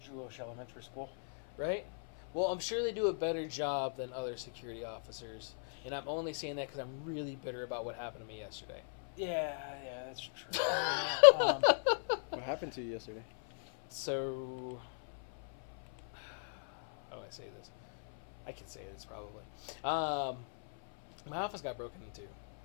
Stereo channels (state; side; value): silent; right; 53 dB below the other